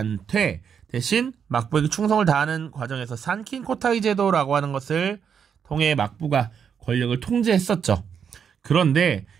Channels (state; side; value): quieter; left; 7.3 dB